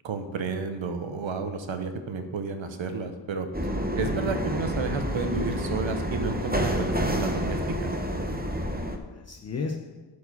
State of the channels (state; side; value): normal; both; correlation 0.31